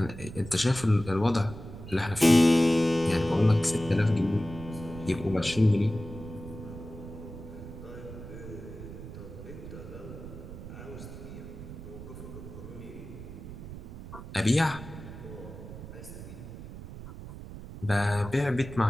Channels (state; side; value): noise; right; rumble, 12 dB below the sound